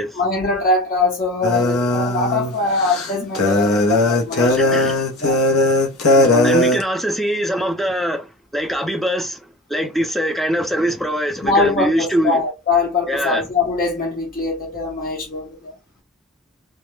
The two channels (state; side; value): normal; both; correlation 0.34